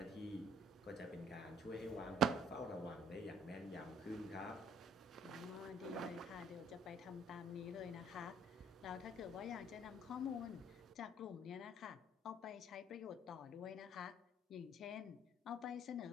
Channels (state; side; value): normal; both; correlation 0.60